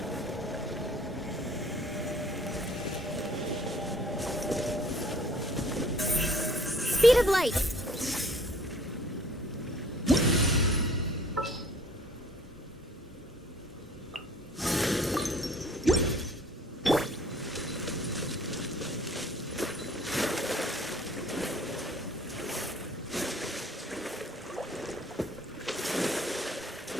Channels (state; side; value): normal; both; correlation 0.55